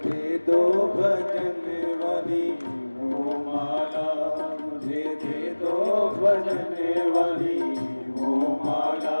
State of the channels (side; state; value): both; inverted; correlation -1.00